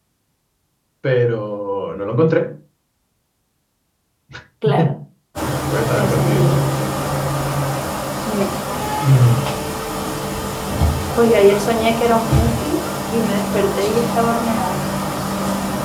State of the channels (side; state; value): both; identical; correlation 1.00